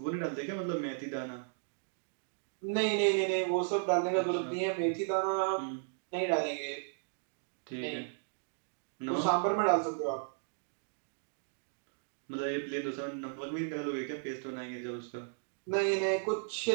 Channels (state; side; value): silent; left; digital silence